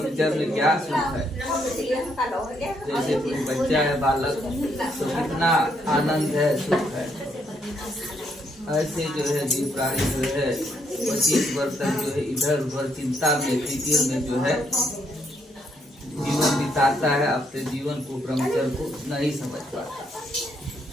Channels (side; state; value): both; normal; correlation 0.73